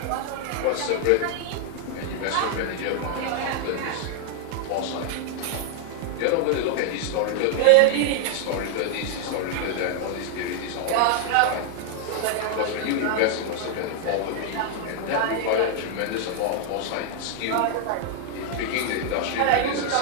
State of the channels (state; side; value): different; both; correlation 0.00